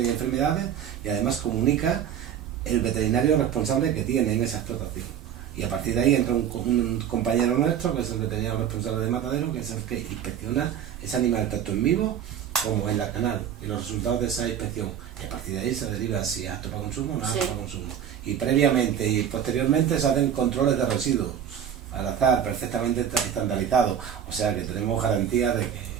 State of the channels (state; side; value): quieter; left; 9.1 dB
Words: de enfermedades, y además comunica el veterinario responsable que tiene en esa explotación. Y a partir de ahí entra un compañero nuestro, que es el veterinario responsable de matadero, que es el que inspecciona ese animal tanto en vivo como en la canal, y los resultados de esa inspección. Y a partir de ahí se deriva si es apto para consumo o no es apto para consumo. Y previamente y posteriormente se hacen controles de residuos al azar, perfectamente estandarizados. O sea que tenemos garantía de que